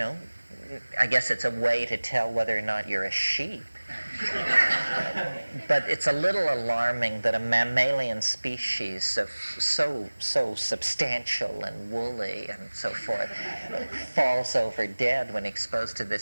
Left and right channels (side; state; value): both; inverted; correlation -1.00